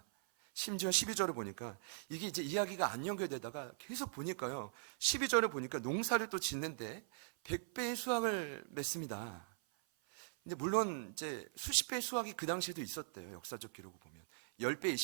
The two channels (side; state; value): left; silent; 51 dB below the other